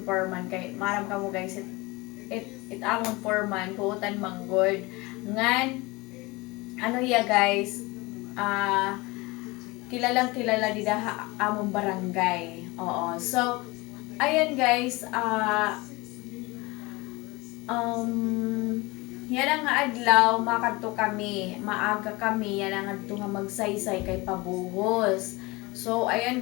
foreman kay maram ka mo guys it amon foreman buutan manggod ngan ano ya guys kilalang kilala di daha amon barangay. Oo, so ayan guys yan ang adlaw makadto kami maaga kami yan ang adto nga magsaysay kay pabuhos. So ayan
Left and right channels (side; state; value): right; quieter; 23.4 dB